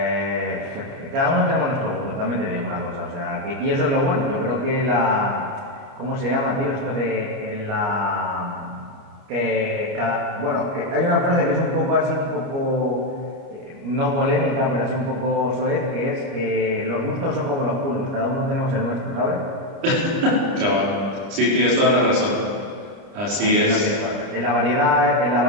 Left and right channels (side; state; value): left; late; 30 ms